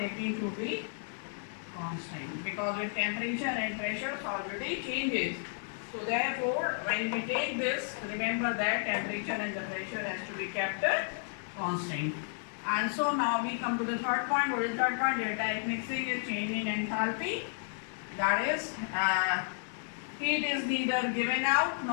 to be constant, because with temperature and pressure solidity changes. So therefore, when we take this, remember that temperature and the pressure has to be kept constant. And so now we come to the third point. What is the third point? Delta H mixing is change in enthalpy. That is, heat is neither given out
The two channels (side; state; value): right; silent; digital silence